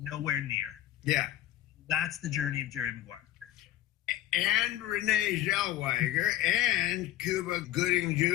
near. Yeah. That's the journey of Jerry Maguire. And Renee Zellweger and Cuba Gooding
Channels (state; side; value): quieter; right; 13.5 dB